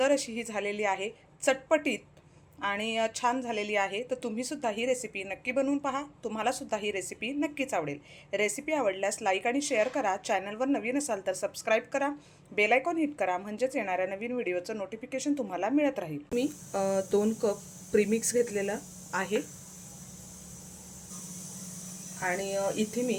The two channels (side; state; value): both; identical; correlation 1.00